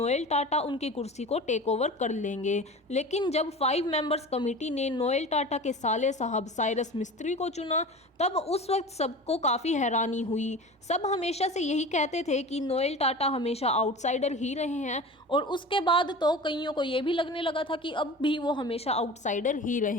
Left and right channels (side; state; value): both; normal; correlation 0.35